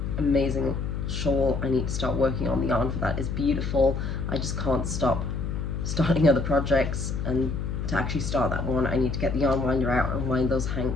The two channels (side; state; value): left; noise; hum, 3 dB below the sound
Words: amazing shawl I need to start working on. The yarn for that is beautiful. I just can't stop starting other projects, and to actually start that one I need to get the yarn winder out and wind those